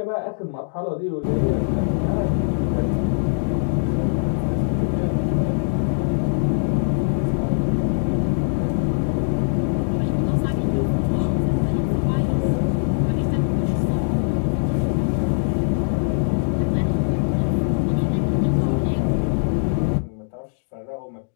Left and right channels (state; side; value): silent; right; digital silence